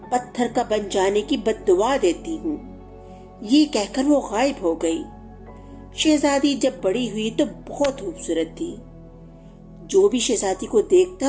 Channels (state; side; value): identical; both; correlation 1.00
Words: پتھر کا بن جانے کی بد دعا دیتی ہوں۔ یہ کہہ کر وہ غائب ہو گئی۔ شہزادی جب بڑی ہوئی تو بہت خوبصورت تھی۔ جو بھی شہزادی کو